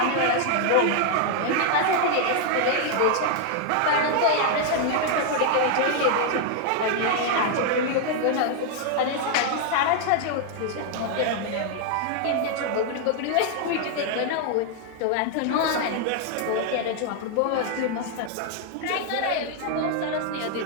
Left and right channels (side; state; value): both; different; correlation 0.00